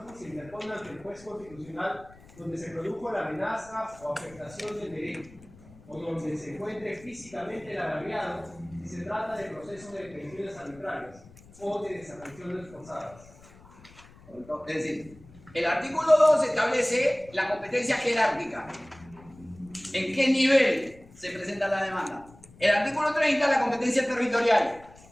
se interpone ante el juez constitucional donde se produjo la amenaza o afectación del derecho, o donde se encuentre físicamente el agraviado si se trata de procesos de detenciones arbitrarias o de desapariciones forzadas. Es decir, el artículo 2 establece la competencia jerárquica. ¿En qué nivel se presenta la demanda? El artículo 30, la competencia territorial.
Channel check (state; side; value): noise; left; rumble, 23 dB below the sound